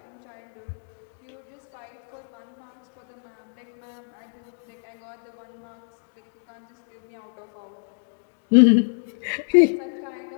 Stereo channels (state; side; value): silent; right; digital silence